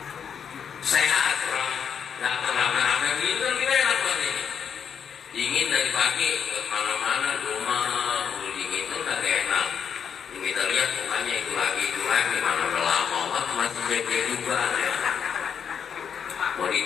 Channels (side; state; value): right; quieter; 7.5 dB